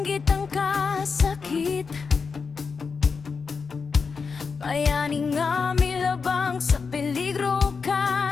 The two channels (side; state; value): right; quieter; 5.2 dB